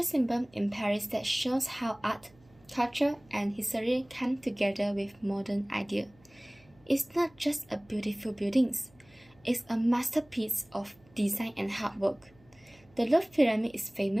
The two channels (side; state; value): right; noise; hum, 29 dB below the sound